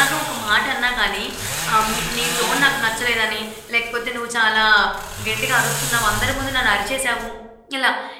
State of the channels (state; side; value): identical; both; correlation 1.00